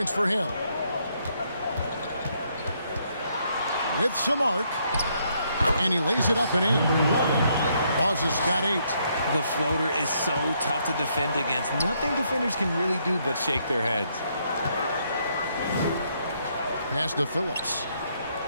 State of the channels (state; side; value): inverted; both; correlation -0.73